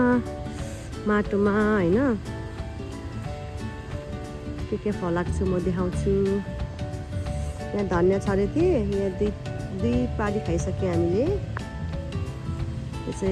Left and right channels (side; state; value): both; identical; correlation 1.00